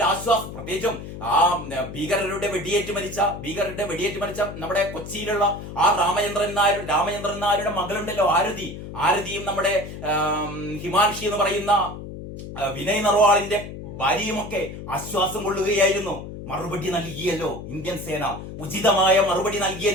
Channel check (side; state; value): left; noise; hum, 10 dB below the sound